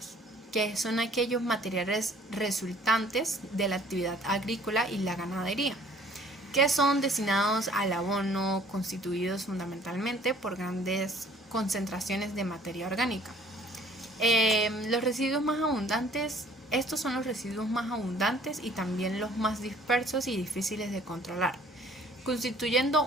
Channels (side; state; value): both; normal; correlation 0.55